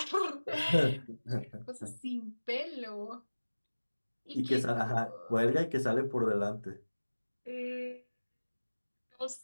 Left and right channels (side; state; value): both; inverted; correlation -1.00